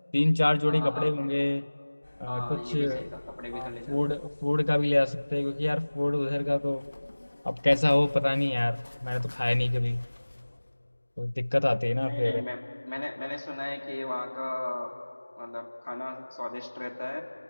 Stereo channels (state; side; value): inverted; both; correlation -1.00